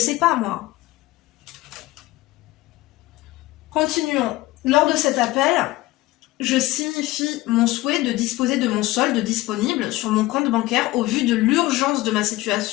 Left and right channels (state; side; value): quieter; right; 18.2 dB